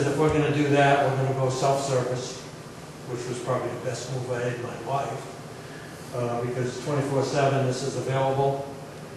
if we're gonna do that, we're gonna go self-service, which was probably the best move I had in my life, because 24/7 this is available.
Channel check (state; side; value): identical; both; correlation 1.00